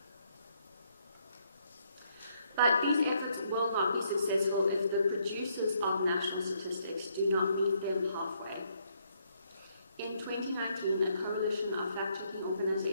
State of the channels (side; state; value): both; inverted; correlation -0.72